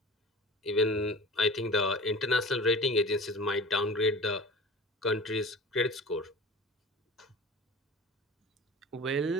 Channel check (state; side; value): normal; both; correlation 0.38